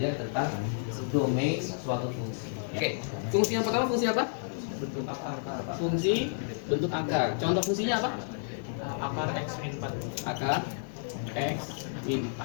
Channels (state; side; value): silent; right; digital silence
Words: tentang domain suatu fungsi. Oke, fungsi yang pertama fungsi apa? Bentuk akar. Fungsi bentuk akar. Contoh fungsinya apa? Akar X min 4. Akar X min